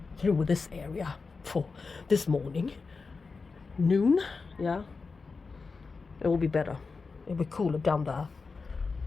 through with this area for this morning. Noon, yeah. It will be better. It will be cooler down there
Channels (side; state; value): right; quieter; 4.5 dB